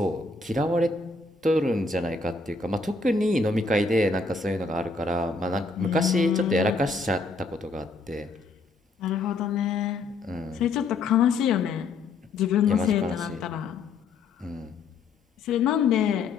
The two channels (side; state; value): right; quieter; 3.8 dB